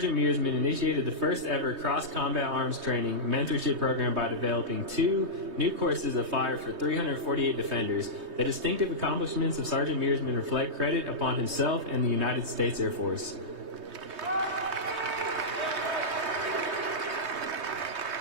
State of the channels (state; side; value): late; left; 3.2 ms